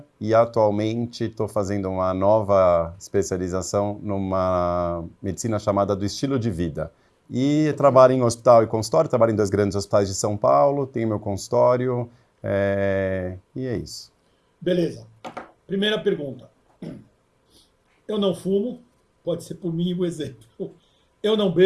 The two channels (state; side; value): identical; both; correlation 1.00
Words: e atualmente estou fazendo uma nova especialização numa medicina chamada do estilo de vida. E trabalho em hospital e consultório, trabalho em 2 grandes hospitais de São Paulo, tenho meu consultório, e é isso. Beleza. Primeira pergunta. Eu não fumo, pode ser por mim o exemplo. Eu não